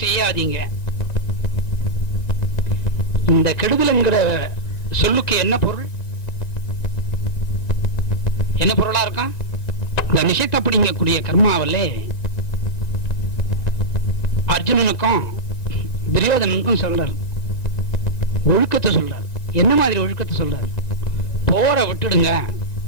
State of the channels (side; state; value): right; late; 1.9 ms